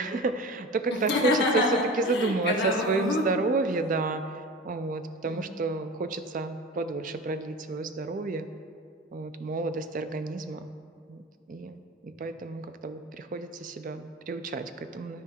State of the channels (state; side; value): normal; both; correlation 0.34